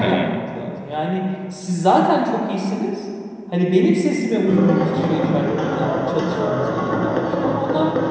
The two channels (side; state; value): both; identical; correlation 1.00